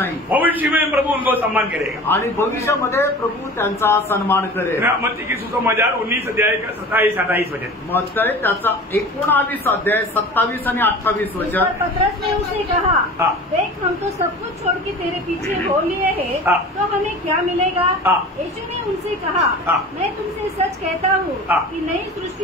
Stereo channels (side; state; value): both; normal; correlation 0.38